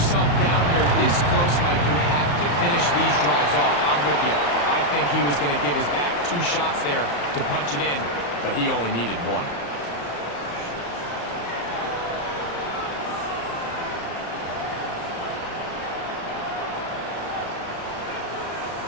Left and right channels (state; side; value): late; right; 35 ms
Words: down here this close, Mike, you have to finish these drives off. I'm with you. I think he was going to give his back 2 shots there to punch it in, but he only needed 1.